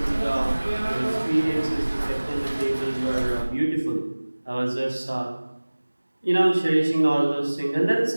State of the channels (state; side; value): inverted; both; correlation -1.00